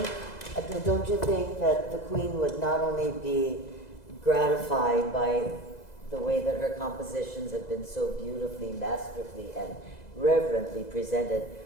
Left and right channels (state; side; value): late; right; 2.0 ms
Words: don't you think that the Queen would not only be gratified by the way that her compositions have been so beautifully, masterfully, and reverently presented,